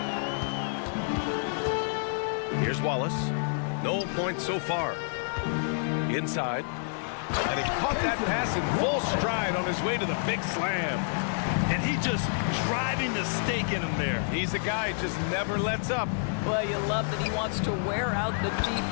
Here's Wallace. No points so far. Inside. And he caught that pass in full stride on his way to the big slam. And he just driving the stake in him there. He's a guy who just never lets up. Well, you love that he wants to wear out the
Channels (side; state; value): right; silent; 59 dB below the other